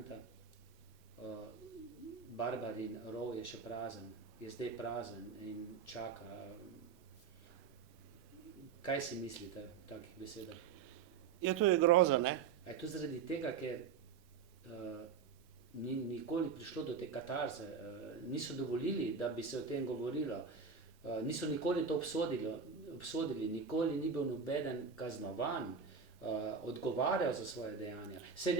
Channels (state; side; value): quieter; left; 6.1 dB